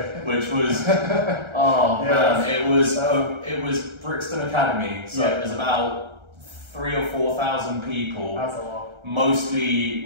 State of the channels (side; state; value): left; late; 1.3 ms